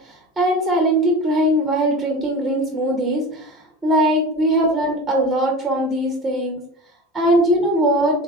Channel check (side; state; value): both; normal; correlation 0.32